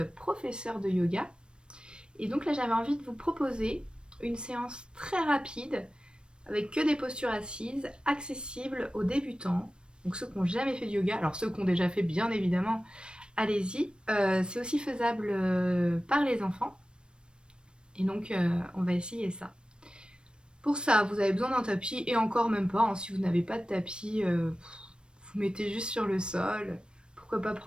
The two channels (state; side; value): late; left; 0.054 ms